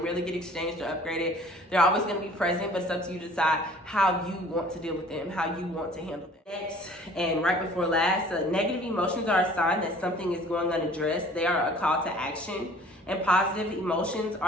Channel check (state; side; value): normal; both; correlation 0.51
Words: get exchanged or upgraded. They're always going to be present, but it's up to you to decide how you want to deal with them, how you want to handle them. Next, and right before last, negative emotions are a sign that something is going unaddressed. They are a call to action, and positive emotions